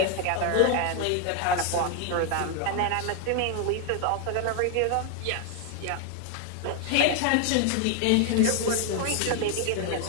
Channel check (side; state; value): both; different; correlation 0.01